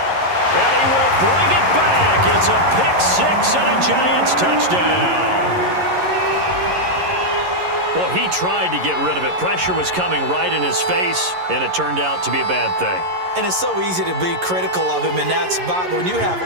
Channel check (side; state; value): left; late; 11 ms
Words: he will bring it back. It's a pick-6 and a Giants touchdown. Well, he tried to get rid of it. Pressure was coming right in his face, and it turned out to be a bad thing. And it's so easy to be critical of him in that spot. But when you have